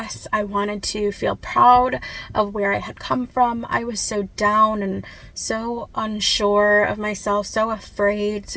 I wanted to feel proud of where I had come from. I was so down and so unsure of myself, so afraid,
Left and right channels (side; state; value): both; identical; correlation 1.00